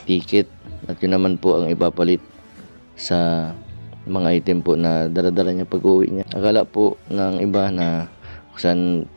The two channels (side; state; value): both; inverted; correlation -1.00